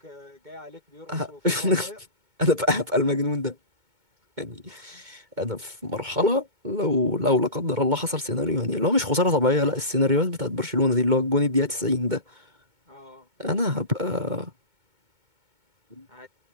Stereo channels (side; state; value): left; late; 2.2 ms